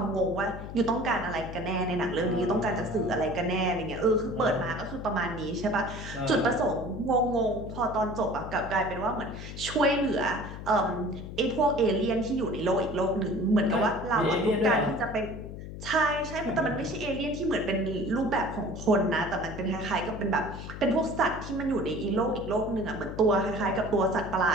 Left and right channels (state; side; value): noise; left; hum, 10 dB below the sound